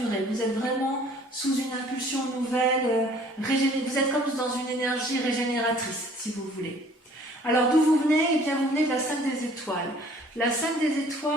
Vous êtes vraiment sous une impulsion nouvelle, vous êtes comme dans une énergie régénératrice, si vous voulez. Alors, d'où vous venez? Eh bien, vous venez de la 5 des étoiles. La 5 des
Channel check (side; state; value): both; normal; correlation 0.55